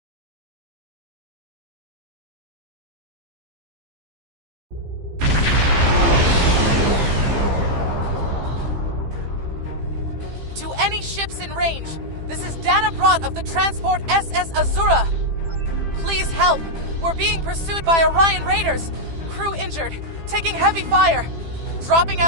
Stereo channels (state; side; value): late; left; 15 ms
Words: To any ships in range, this is Dana Brott of the transport SS Azura. Please help. We're being pursued by Orion Raiders. Crew injured, taking heavy fire. Dropping